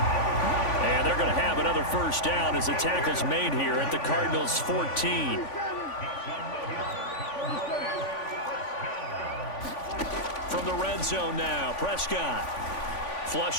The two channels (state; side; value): late; right; 3.5 ms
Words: And they're going to have another 1st down as the tackle's made here at the Cardinals' 14. From the red zone now, Prescott.